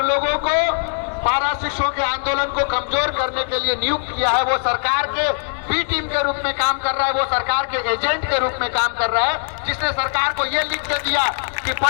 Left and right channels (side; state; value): right; silent; digital silence